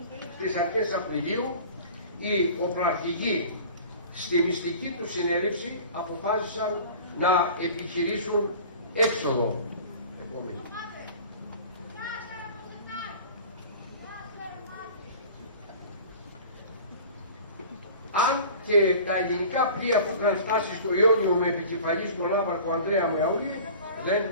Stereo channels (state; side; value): inverted; both; correlation -0.42